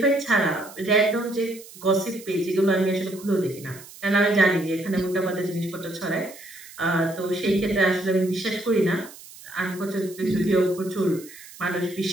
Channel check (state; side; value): noise; right; hiss, 18 dB below the sound